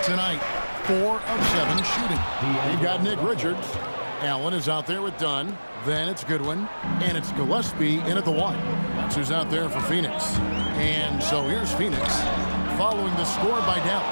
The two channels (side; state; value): both; inverted; correlation -1.00